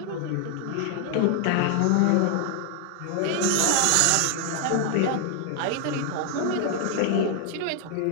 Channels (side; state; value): both; different; correlation 0.00